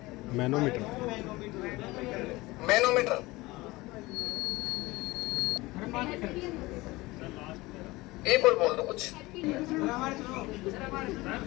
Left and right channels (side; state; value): right; quieter; 20.9 dB